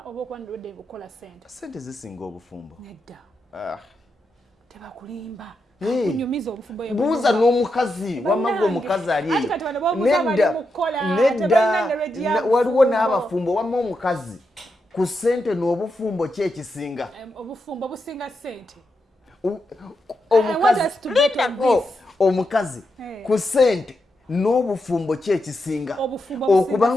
oba okuba ready okukola sente zisinga obufumbo nedda tebakulimba kunyumiza obufumbo buuza n'omukazi wamaga omukazi ali nedda waliwo n'abafumbo wamma omukazi ku sente n'obufumbo ki ekisinga obufumbo businga sente omukazi ku sente n'obufumbo ki ekisinga okuba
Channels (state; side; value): normal; both; correlation 0.85